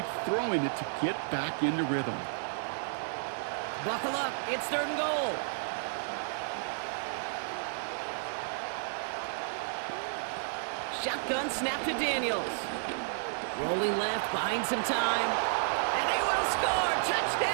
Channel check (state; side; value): silent; left; digital silence